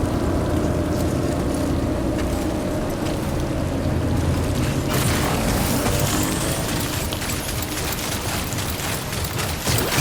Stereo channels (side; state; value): both; identical; correlation 1.00